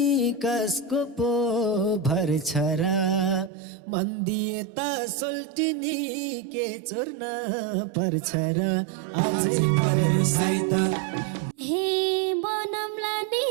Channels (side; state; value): left; drops out; at 3.5 s